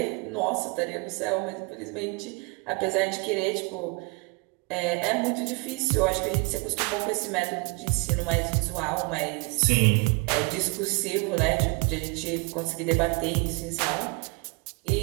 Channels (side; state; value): left; quieter; 30.1 dB